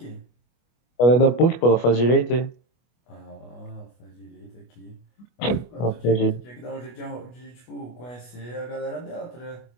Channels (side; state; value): right; late; 25 ms